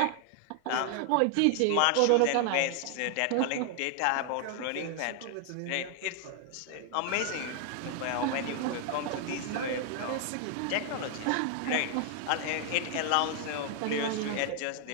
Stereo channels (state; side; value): different; both; correlation 0.00